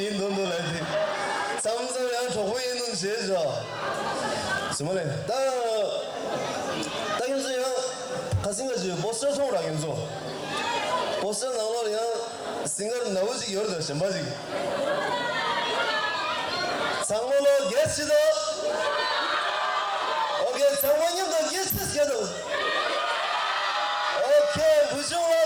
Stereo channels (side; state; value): both; identical; correlation 1.00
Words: 라이트. 삼삼이랑 조부 인돈 제일 좋아. 스물네. 딱 현수야 가슴 가지 버스 통으로 현수. 버스 나오면 싱글 나오지 열다 შემ바지. 장모로 게스트도 오케이 장모님도 게스트 시켜도 오케이 부정화